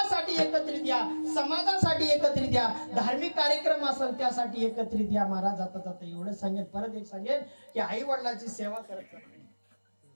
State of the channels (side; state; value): both; inverted; correlation -1.00